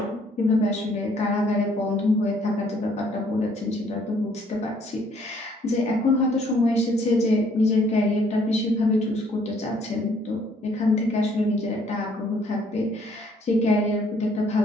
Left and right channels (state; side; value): normal; both; correlation 0.63